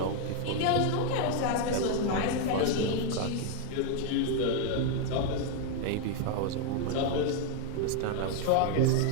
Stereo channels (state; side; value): different; both; correlation 0.00